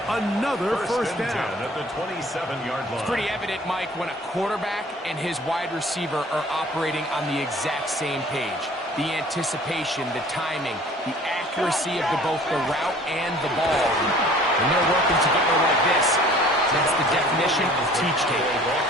Another first down. At the 27-yard line. It's pretty evident, Mike, when a quarterback and his wide receiver are operating on the exact same page. The anticipation, the timing, the accuracy of both the route and the ball. When they're working together like this, that's the definition of teach tape.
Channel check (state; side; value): normal; both; correlation 0.51